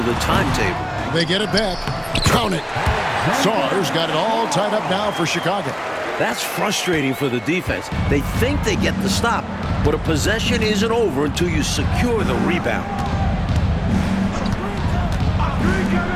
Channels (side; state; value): both; identical; correlation 1.00